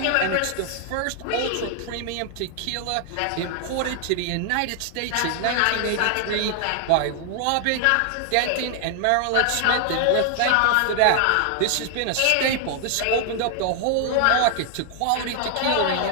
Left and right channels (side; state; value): both; different; correlation 0.00